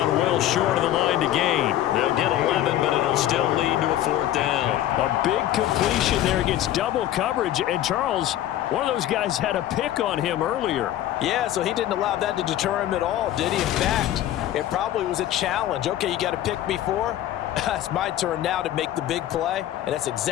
well short of the line to gain. They'll get 11, but it'll still lead to a 4th down. A big completion there against double coverage. And Charles, one of those guys had a pick on him earlier. Yeah, so he didn't allow that to deter him at all, did he? In fact, it probably was a challenge. Okay, you got to pick me 4. It's my turn now to make the big play, and that's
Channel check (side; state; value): right; quieter; 12.8 dB